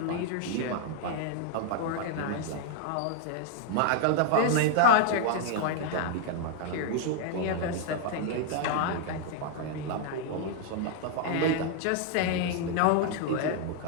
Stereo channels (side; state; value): both; different; correlation 0.00